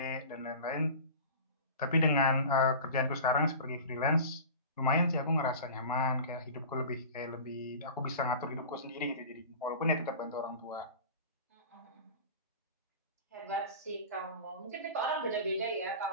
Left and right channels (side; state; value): both; inverted; correlation -0.36